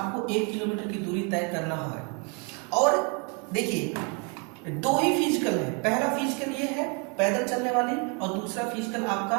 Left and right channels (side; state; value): left; quieter; 35.4 dB